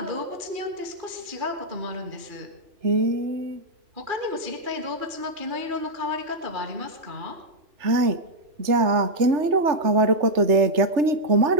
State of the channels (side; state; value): left; late; 3.3 ms